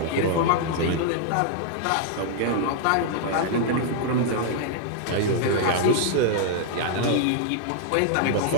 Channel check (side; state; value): both; different; correlation -0.01